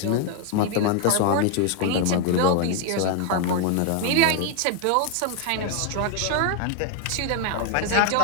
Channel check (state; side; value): different; both; correlation 0.01